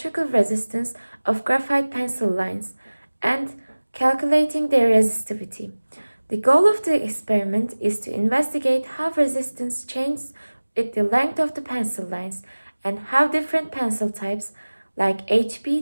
resistance of graphite pencil lines and calculating their resistivity. The goal of the experiment is to investigate how resistance changes with the length of the pencil lines and how different pencil types like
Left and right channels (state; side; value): inverted; both; correlation -1.00